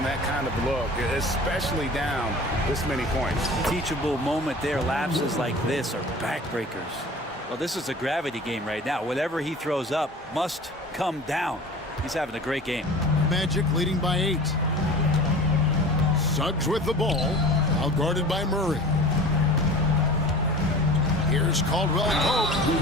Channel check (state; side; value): normal; both; correlation 0.40